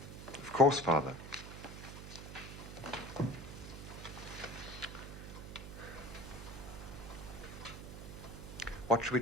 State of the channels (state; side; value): noise; right; hum, 10 dB below the sound